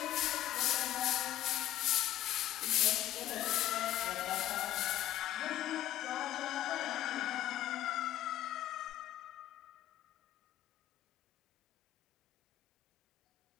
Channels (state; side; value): quieter; right; 13.2 dB